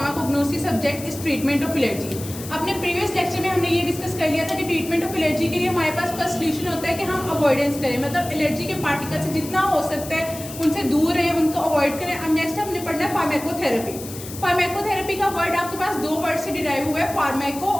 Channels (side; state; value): left; noise; hiss, 13 dB below the sound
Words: subject is treatment of allergy. अपने previous lecture में हमने ये discuss कर लिया था कि treatment of allergy के लिए हमारे पास फर्स्ट सोल्यूशन होता है कि हम अवॉइडेंस करें, मतलब एलर्जी के पार्टिकल से जितना हो सकता है उनसे दूर रहें, उनको अवॉइड करें। अब नेक्स्ट हमने पढ़ना है फार्माकोथेरेपी। फार्माकोथेरेपी का वर्ड आपके पास दो वर्ड से डिराइव हुआ है, फार्माको